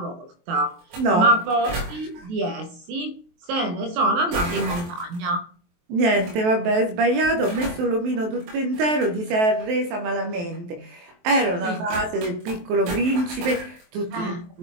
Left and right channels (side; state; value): left; late; 23 ms